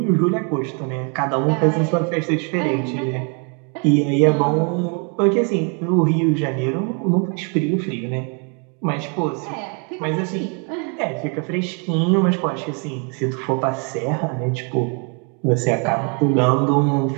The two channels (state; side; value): quieter; left; 37.0 dB